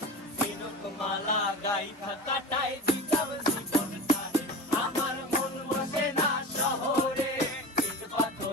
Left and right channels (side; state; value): both; normal; correlation 0.31